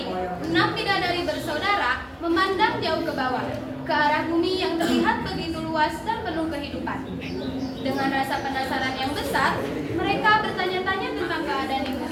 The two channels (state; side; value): identical; both; correlation 1.00